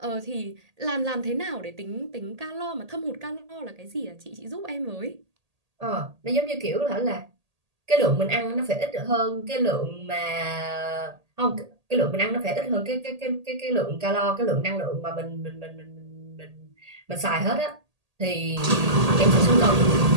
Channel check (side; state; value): left; late; 1.8 ms